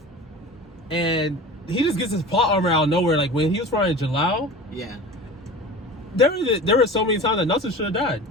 and he just gets his plot armor out of nowhere. Like, when he was fighting Jalal, Yeah. there were so many times that Natsu should have died.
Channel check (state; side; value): normal; both; correlation 0.36